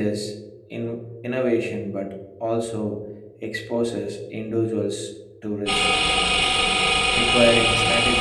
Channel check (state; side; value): identical; both; correlation 1.00